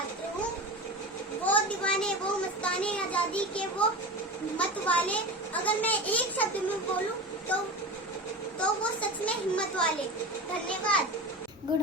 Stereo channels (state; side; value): normal; both; correlation 0.29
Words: हूँ। वो दीवाने, वो मस्ताने आजादी के वो मत वाले, अगर मैं एक शब्द में बोलूं तो वो सच में हिम्मत वाले। धन्यवाद। गुड